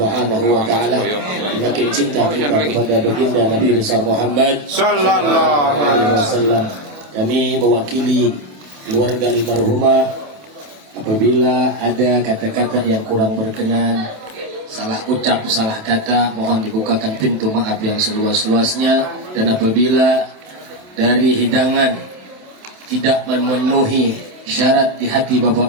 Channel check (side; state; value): left; late; 27 ms